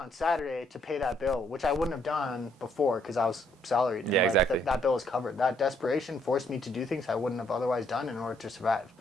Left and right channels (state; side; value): normal; both; correlation 0.70